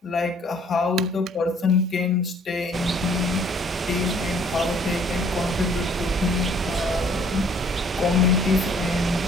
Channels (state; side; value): normal; both; correlation 0.59